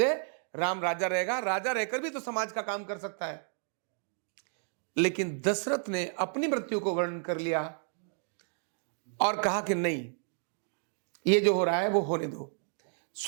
राम राजा रहेगा, राजा रहकर भी तो समाज का काम कर सकता है। लेकिन दशरथ ने अपनी मृत्यु को वर्णन कर लिया और कहा कि नहीं, ये जो हो रहा है वो होने दो।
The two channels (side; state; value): left; silent; 57 dB below the other